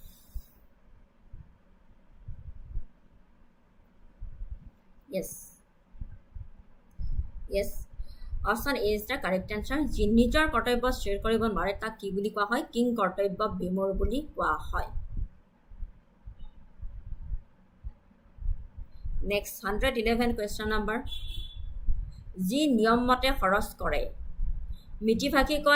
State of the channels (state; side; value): identical; both; correlation 1.00